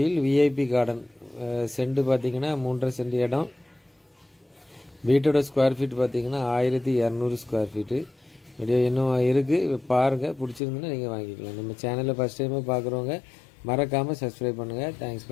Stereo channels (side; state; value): right; drops out; at 10.6 s